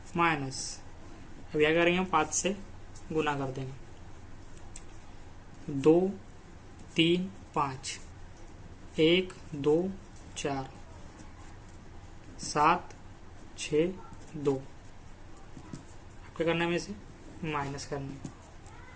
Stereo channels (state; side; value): identical; both; correlation 1.00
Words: माइनस। अब यहाँ करेंगे हम 5 से गुना कर देंगे, 2, 3, 5, 1, 2, 4, 7, 6, 2। क्या करना है? हमें इसे माइनस करना है,